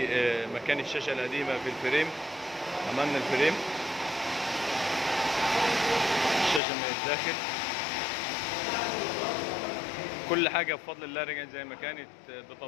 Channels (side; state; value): right; drops out; at 6.6 s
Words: مكان الشاشة القديمة في الفريم عملنا الفريم، الشاشة من الداخل، كل حاجة بفضل الله رجعت زي ما كانت